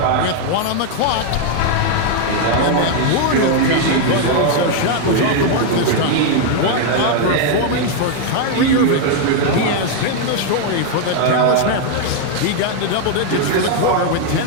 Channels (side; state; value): both; different; correlation 0.00